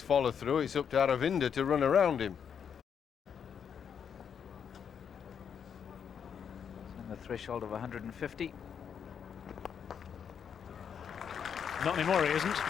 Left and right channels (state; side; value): quieter; right; 7.5 dB